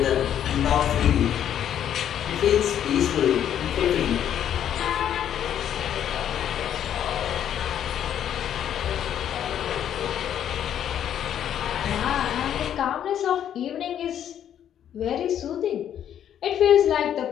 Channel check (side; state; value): right; quieter; 9.9 dB